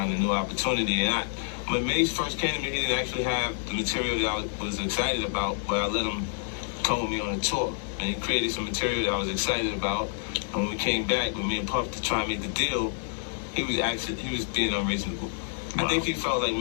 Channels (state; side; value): silent; right; digital silence